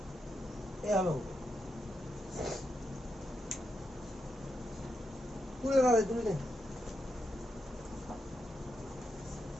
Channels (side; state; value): both; normal; correlation 0.84